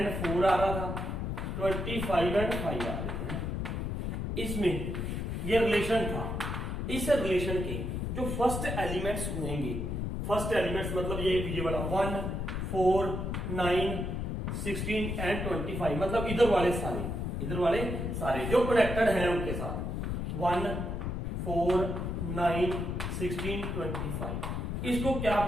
4 आ रहा था, 25 एंड 5 आ रहे थे। इसमें ये रिलेशन था। इस रिलेशन के जो फर्स्ट एलिमेंट्स होंगे, फर्स्ट एलिमेंट्स मतलब ये वाला 1 4 9 16 एंड 25, मतलब इधर वाले सारे जो कनेक्टेड हैं उनके साथ 1 4 9 16 25, इसको क्या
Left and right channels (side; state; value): left; noise; rumble, 2 dB below the sound